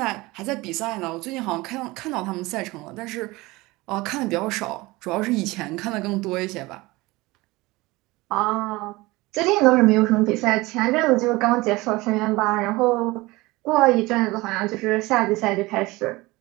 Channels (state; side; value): quieter; left; 21.4 dB